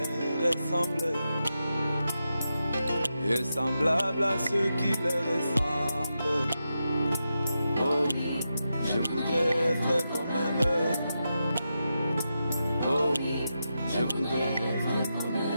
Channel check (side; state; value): both; inverted; correlation -0.88